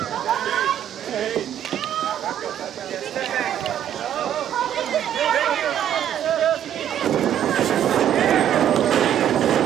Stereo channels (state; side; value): quieter; left; 10.4 dB